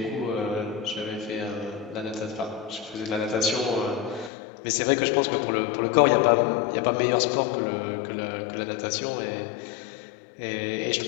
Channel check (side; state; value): right; drops out; at 4.3 s